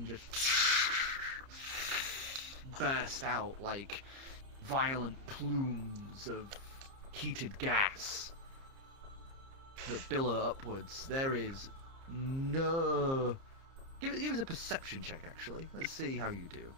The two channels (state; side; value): late; left; 30 ms